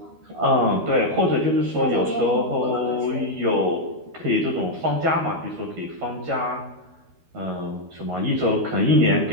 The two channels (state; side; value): late; left; 12 ms